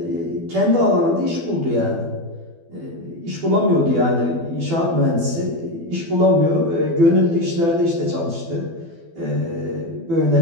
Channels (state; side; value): late; left; 12 ms